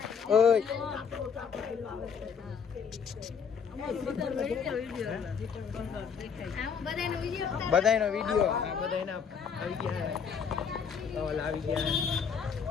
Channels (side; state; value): right; quieter; 6.6 dB